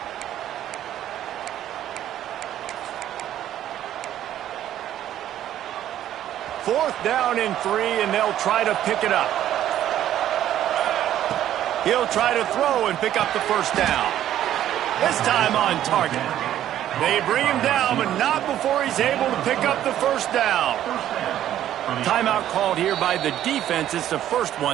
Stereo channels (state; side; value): quieter; left; 11.8 dB